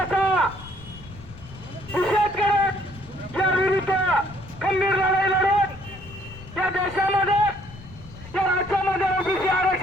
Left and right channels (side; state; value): left; noise; rumble, 17 dB below the sound